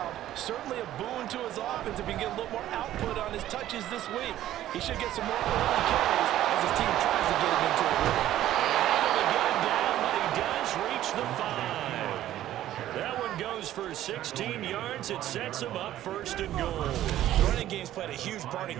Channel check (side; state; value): left; quieter; 13.1 dB